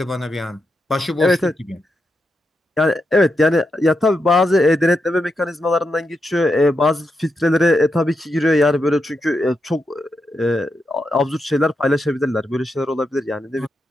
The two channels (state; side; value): normal; both; correlation 0.85